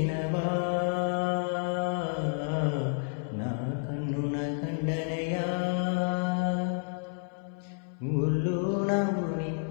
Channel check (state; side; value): silent; right; 58 dB below the other